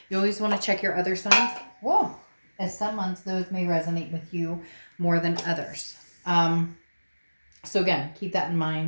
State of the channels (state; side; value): inverted; both; correlation -1.00